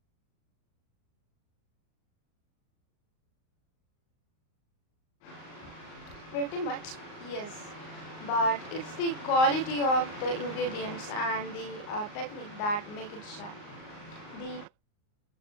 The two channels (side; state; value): right; late; 38 ms